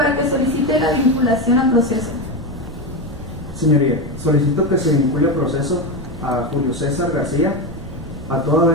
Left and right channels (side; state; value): right; noise; rumble, 13 dB below the sound